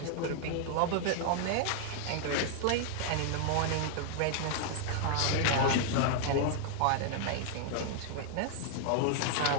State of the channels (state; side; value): different; both; correlation 0.00